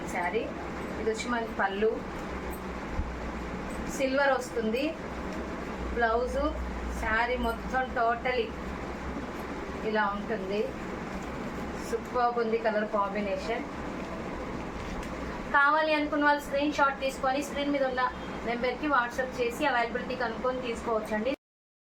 శారీ. ఇది వచ్చి మనకి పళ్ళు, సిల్వర్ వస్తుంది. బ్లౌజు, శారీ మొత్తం టోటలీ ఇలా ఉంటుంది. సూపర్ ఉంది కలర్ కాంబినేషన్. కావాలి అనుకున్న వాళ్ళు స్క్రీన్ షాట్ తీసుకొని స్క్రీన్ మీద ఉన్న నెంబర్కి వాట్సాప్ చేసి అవైలబిలిటీ కనుక్కొని తీసుకోవచ్చండి.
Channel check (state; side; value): identical; both; correlation 1.00